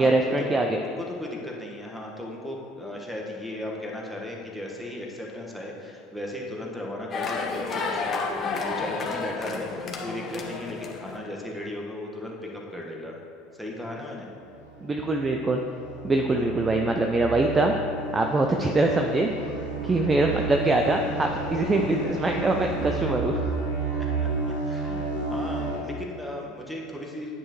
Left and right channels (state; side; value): normal; both; correlation 0.61